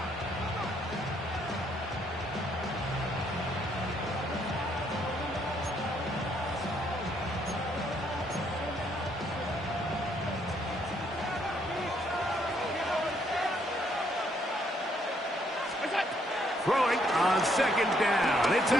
Throwing on 2nd down. It's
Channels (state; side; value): normal; both; correlation 0.70